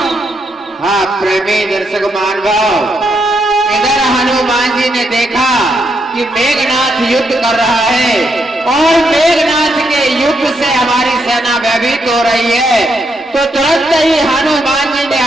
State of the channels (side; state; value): both; normal; correlation 0.79